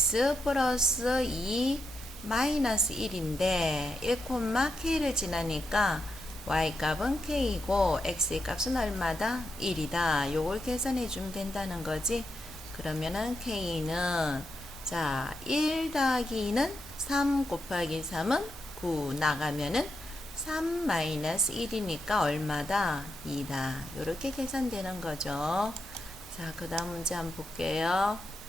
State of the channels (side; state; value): both; normal; correlation 0.85